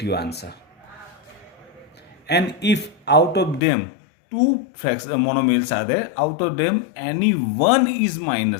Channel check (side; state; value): right; drops out; at 3.6 s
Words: answer. And if out of them two monomials are there, out of them any one is